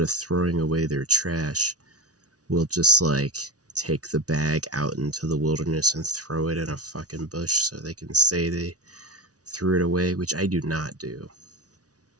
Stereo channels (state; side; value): late; left; 0.68 ms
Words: of throwing away their trash, will just like take the bag out into the wilderness and throw it in a fucking bush so they can say they threw it away, which I do not do.